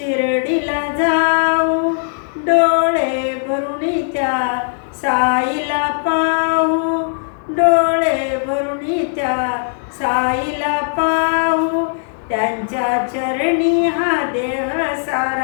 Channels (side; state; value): right; silent; digital silence